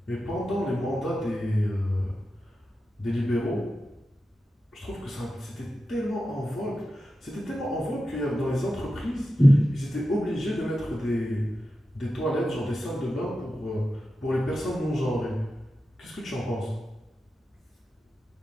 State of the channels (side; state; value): both; normal; correlation 0.91